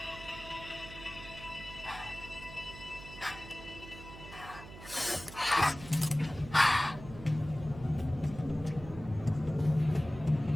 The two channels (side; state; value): right; noise; hum, 15 dB below the sound